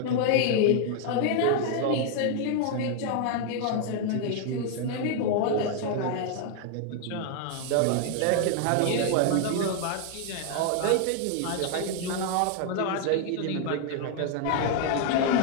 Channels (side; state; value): both; different; correlation 0.00